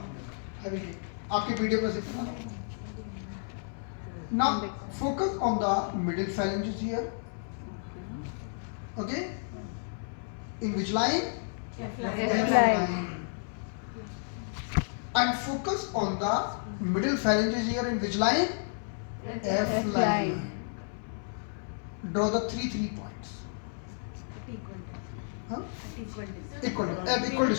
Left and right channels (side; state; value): right; silent; 57 dB below the other